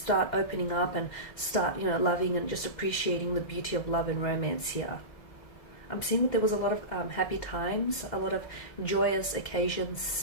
opening up and start, loving and just appreciating the beauty of love and romance here. I'm seeing that there was a lot of happy times, a lot of joyous occasions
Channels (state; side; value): late; right; 2.1 ms